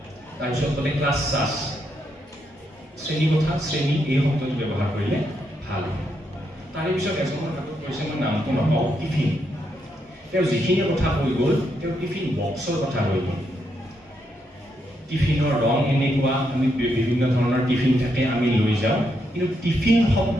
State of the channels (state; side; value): normal; both; correlation 0.79